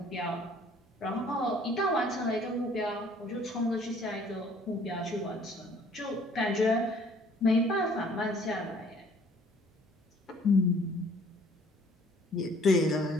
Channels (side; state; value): both; normal; correlation 0.57